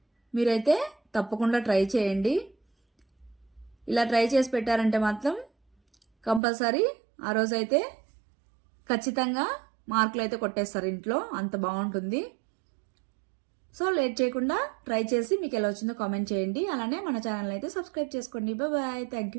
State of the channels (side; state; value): left; drops out; at 6.4 s